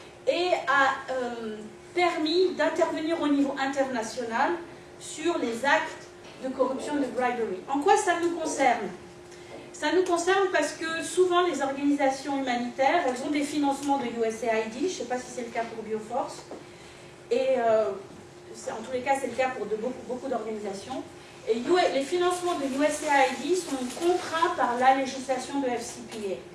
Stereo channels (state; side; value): identical; both; correlation 1.00